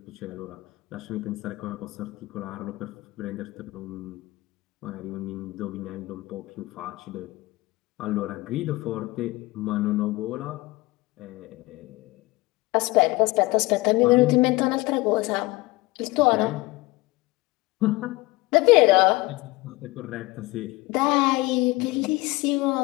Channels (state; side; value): quieter; right; 21.5 dB